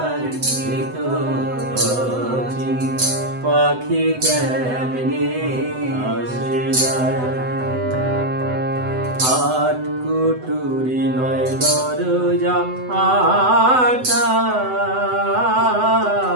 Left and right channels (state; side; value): late; left; 7.9 ms